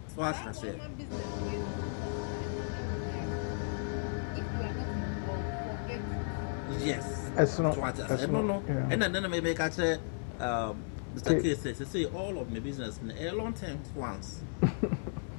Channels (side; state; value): right; silent; digital silence